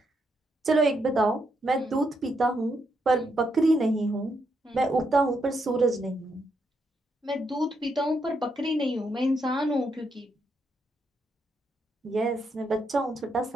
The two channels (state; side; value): normal; both; correlation 0.79